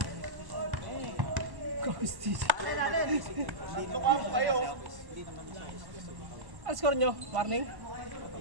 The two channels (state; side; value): late; left; 1.1 ms